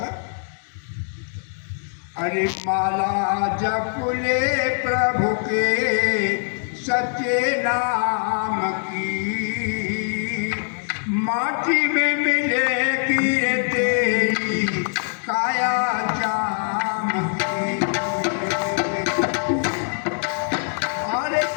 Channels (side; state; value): right; silent; 63 dB below the other